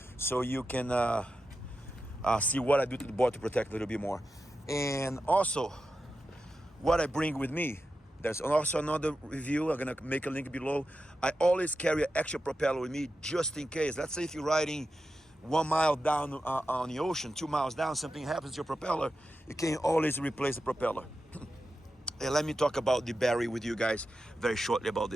so you can see what I do to the board to protect a little bit more. And also, what I bring with me. There's also another review, I'm gonna make a link below. I always carry an extra propeller with me just in case. Let's say if you're riding 1 mile down on the ocean, 2 miles down, something happens to your propeller, you can always replace the propeller. And let me talk about the battery with you guys very shortly about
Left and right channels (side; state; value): both; normal; correlation 0.90